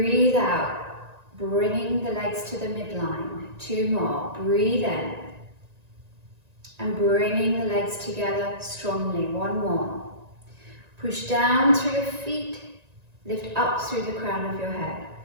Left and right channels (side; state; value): left; late; 1.9 ms